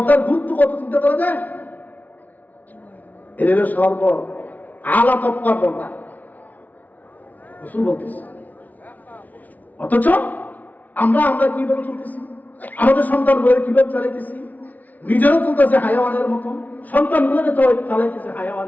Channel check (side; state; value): right; late; 0.076 ms